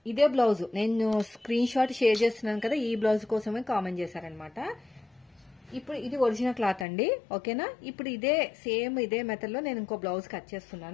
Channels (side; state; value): right; drops out; at 6.9 s